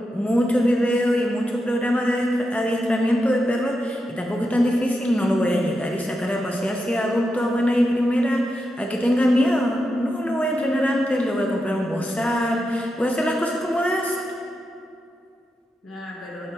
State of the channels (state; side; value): normal; both; correlation 0.87